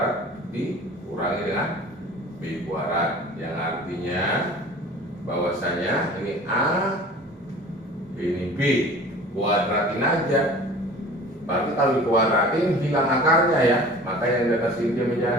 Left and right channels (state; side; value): normal; both; correlation 0.43